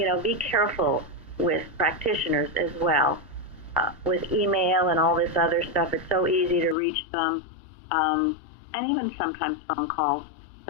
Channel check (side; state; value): right; drops out; at 6.8 s